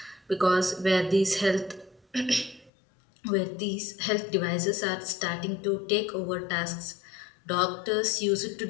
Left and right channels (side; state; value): right; drops out; at 2.7 s